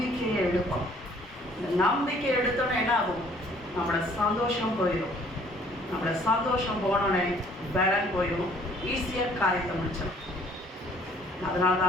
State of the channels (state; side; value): normal; both; correlation 0.58